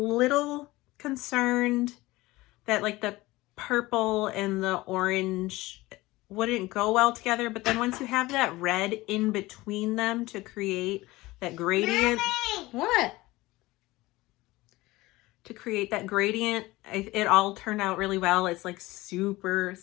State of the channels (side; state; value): right; quieter; 19.7 dB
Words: concerned that like the purple and the orange wouldn't go well together, but then once you have that red in between them to create that gradient. Mommy! What? To create that gradient, it all turned out really well. It's like super,